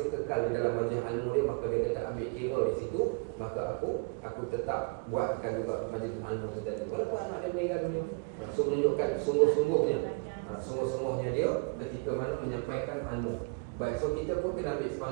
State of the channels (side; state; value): left; quieter; 32.6 dB